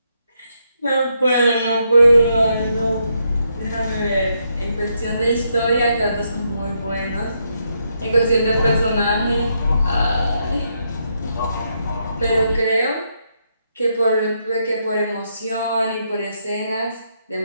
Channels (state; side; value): inverted; both; correlation -0.79